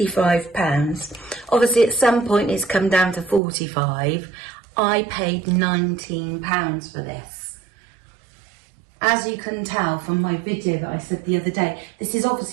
Obviously at some point it's come down to 45. I paid £19 for this. As you can tell from my video that I said the other day, this is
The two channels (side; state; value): left; drops out; at 3.4 s